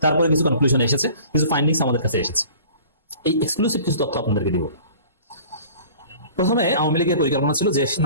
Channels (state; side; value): inverted; both; correlation -0.46